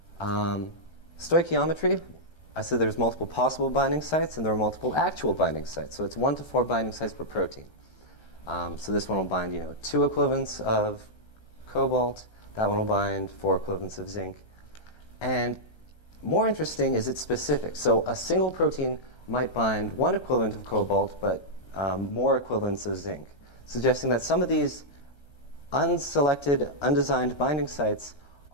Stoichiometry, I said there's multiple possible binding sites, and there are multiple actual binding sites. So it's 1 to 4 binding sites per protein. So this one will bind, 2 equivalents of cobalt. That one will bind 4 equivalents of zinc. And more interesting is it's specific. So a single protein might bind 1 equivalent of cobalt, but more equivalents of zinc, suggesting that some of these unselected, undesigned binding sites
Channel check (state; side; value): late; right; 1.3 ms